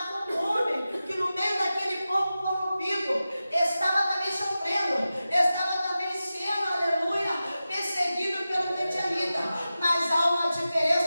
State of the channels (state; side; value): inverted; both; correlation -0.94